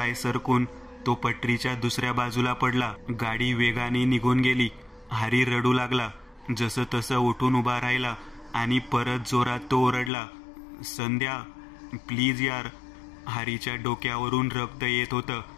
सरकून तो पटरीच्या दुसऱ्या बाजूला पडला. गाडी वेगाने निघून गेली. हरी रडू लागला. जसं तसं उठून उभा राहिला आणि परत जोरात तो ओरडला, संध्या प्लीज यार. हरीच्या डोक्यावरून रक्त येत होतं.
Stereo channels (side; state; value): right; drops out; at 10.1 s